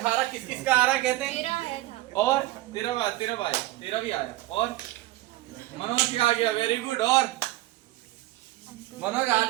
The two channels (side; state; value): left; quieter; 17.6 dB